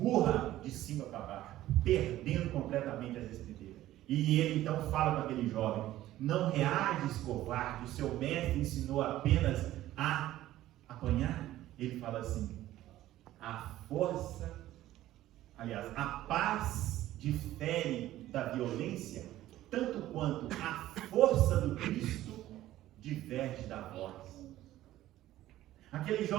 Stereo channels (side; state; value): left; quieter; 14.5 dB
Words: de cima para baixo, perdendo completamente as estribeiras. E ele então fala para aquele jovem: não reages, covarde, o seu mestre ensinou apenas a apanhar. Ele fala assim: a paz difere da violência, tanto quanto a força do Cristo diverge da voz. Aquele